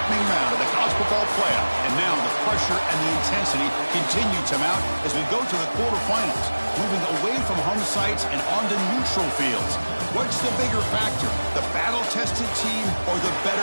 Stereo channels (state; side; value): inverted; both; correlation -1.00